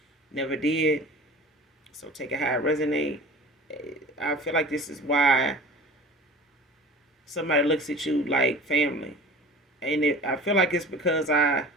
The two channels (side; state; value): both; normal; correlation 0.40